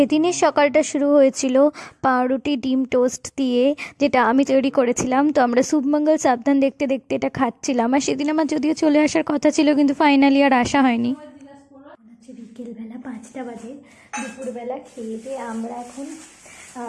সকালটা শুরু হয়েছিল পাউরুটি ডিম টোস্ট দিয়ে, যেটা আমি তৈরি করেছিলাম। তো আমরা শুভমঙ্গল সাবধান দেখতে দেখতে এটা খাচ্ছিলাম। আর সেদিন আমার যদিও চলে আসার কথা ছিল, কিন্তু ফাইনালি আর আসা হয়নি। বিকেলবেলা 5টা বাজে, দুপুরবেলা খেয়ে দিয়ে আমরা এখন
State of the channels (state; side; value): identical; both; correlation 1.00